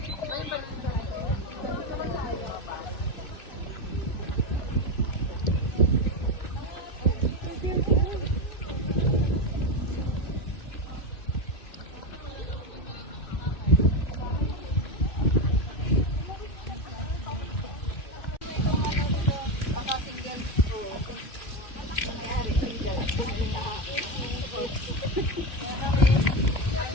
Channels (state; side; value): late; right; 2.8 ms